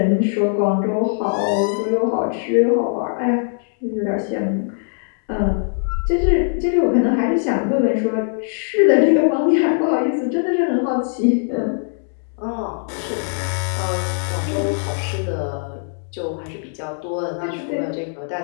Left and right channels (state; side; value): silent; right; digital silence